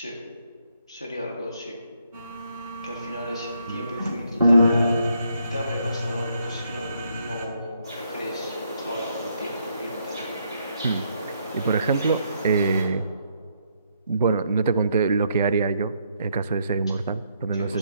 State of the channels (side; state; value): both; inverted; correlation -0.73